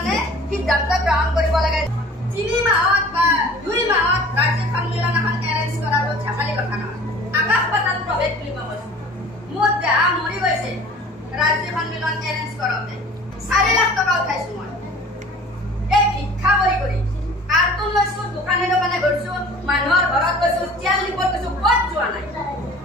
সিদ্ধান্ত গ্ৰহণ কৰিব লাগে। 3 মাহত বা 2 মাহত ৰাজ্যিক সন্মিলন এখন এৰেঞ্জ কৰাটো ঝাকালি কথা নহয়। আকাশ পাতাল প্ৰভেদ বুলি কোৱা কৈছে। মোৰ দেহা মৰি গৈছে ৰাজ্যিক সন্মিলন এৰেঞ্জ কৰোঁতে। 4 লাখ টকা উঠাইছো মই। এই ভিক্ষা কৰি কাৰ্টুন লৈছো, দোকানে দোকানে ঘূৰিছো, মানুহৰ ঘৰত গৈছো, তেল নিবত গৈছো, ক'ত যোৱা নাই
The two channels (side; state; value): both; normal; correlation 0.46